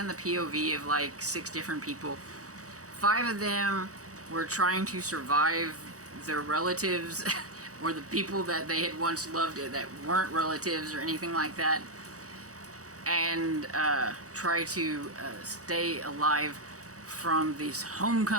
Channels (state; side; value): late; left; 0.66 ms